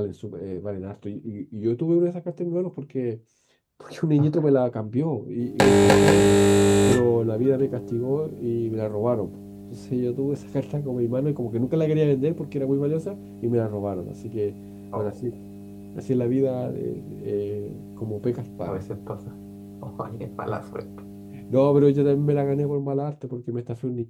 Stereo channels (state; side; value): identical; both; correlation 1.00